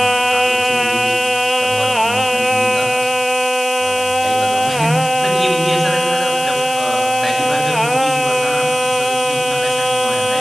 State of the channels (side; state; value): left; noise; hiss, 11 dB below the sound